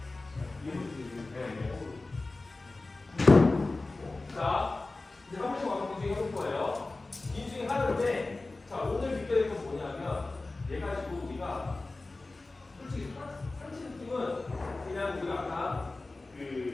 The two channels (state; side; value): quieter; right; 3.2 dB